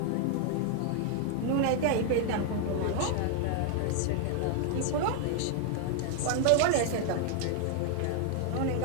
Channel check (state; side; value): different; both; correlation 0.00